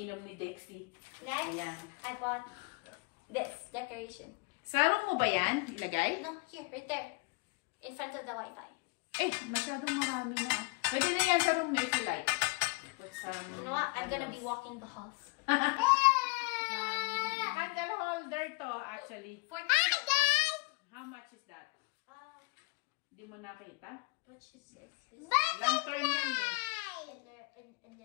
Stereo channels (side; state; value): right; quieter; 29.0 dB